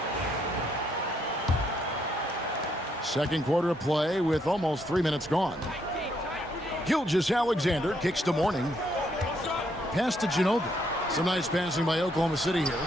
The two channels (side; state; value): both; normal; correlation 0.73